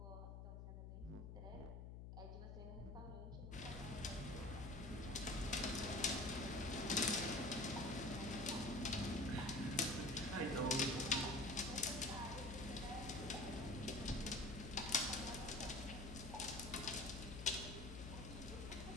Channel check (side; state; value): left; noise; hum, 9 dB below the sound